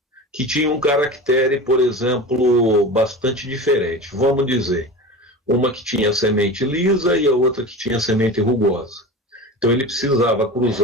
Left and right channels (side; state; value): both; normal; correlation 0.30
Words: que tinham um caractere, por exemplo, bastante diferente. Vamos dizer, uma que tinha semente lisa e a outra que tinha semente rugosa. Então ele precisava